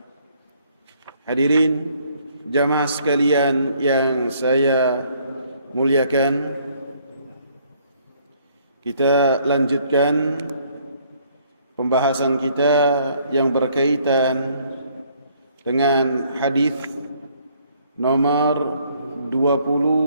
Hadirin jamaah sekalian yang saya muliakan, kita lanjutkan pembahasan kita yang berkaitan dengan hadis nomor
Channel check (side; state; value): both; inverted; correlation -0.64